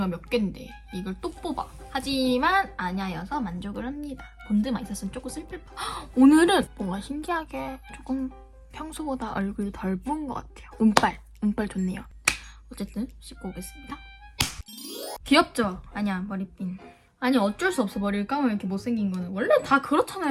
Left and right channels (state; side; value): identical; both; correlation 1.00